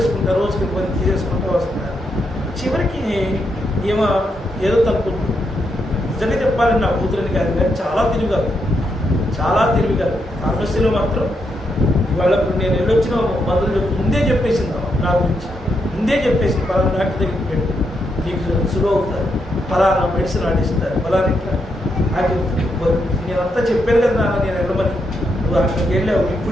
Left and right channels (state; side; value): normal; both; correlation 0.81